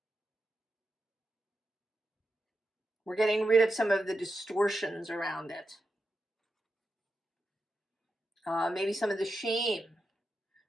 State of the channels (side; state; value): both; normal; correlation 0.88